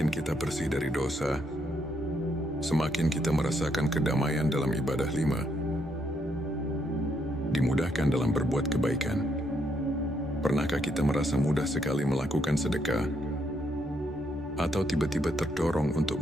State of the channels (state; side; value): noise; left; hum, 29 dB below the sound